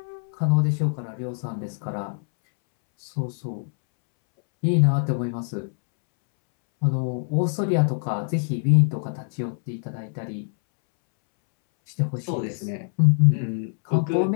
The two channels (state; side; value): silent; right; 62 dB below the other